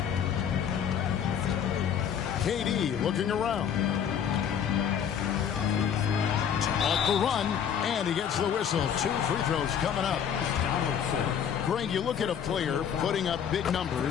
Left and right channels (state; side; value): quieter; right; 8.3 dB